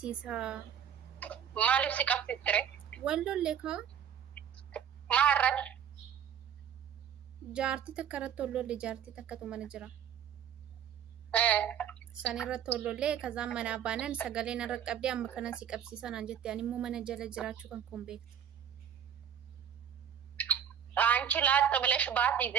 ማለት ሲቀብሲትሬ ወሎሌካ ማረድ ጃርቲ ተከረቶ ወሎሌ ጃርቲ ተከቶ መንጅራ ሰኔረቶ ወሎሌ ከዛ መናባነን ሰገሌን ረቀብዲ አመከነን ሲቀብሲሳን አንጀት ያኒሙ መነጀለ ጅራችሁ ከንኩን ቤት አንቺ ላጥ ብለሽ ባት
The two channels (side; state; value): left; quieter; 8.9 dB